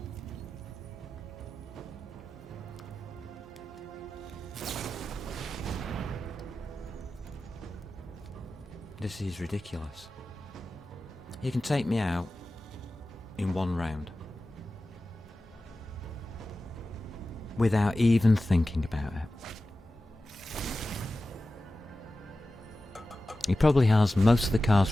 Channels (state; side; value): normal; both; correlation 0.94